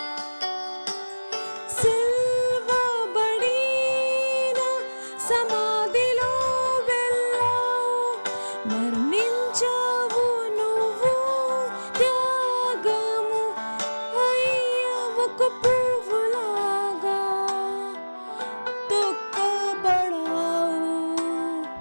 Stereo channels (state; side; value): inverted; both; correlation -1.00